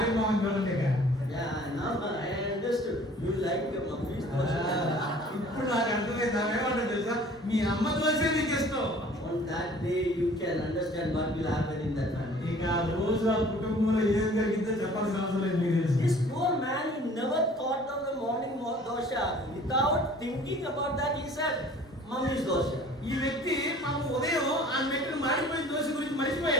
మొహం చూడండి. Yeah, now I understood. You like your mommy's dosa. ఇప్పుడు నాకు అర్థమైంది. ఏమంటాడు తెలుసా, మీ అమ్మ దోశ నీకు ఇష్టం. On that day, you can understand what will happen in that family. ఇక రోజు ఆ కుటుంబంలో ఏం జరిగిందో చెప్పాల్సిన అవసరం లేదు, మీకు తెలుసు. This poor man, he never thought of the morning dosha. Without thinking about that, he said, "Mommy's dosha." ఈ వ్యక్తి పాపం ఉదయం ఆ మెట్టు మాడిపోయిన దోశ గురించి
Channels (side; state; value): both; normal; correlation 0.50